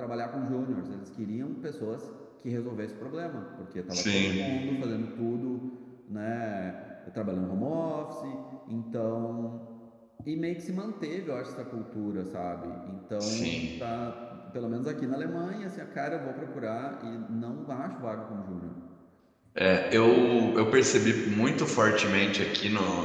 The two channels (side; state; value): both; identical; correlation 1.00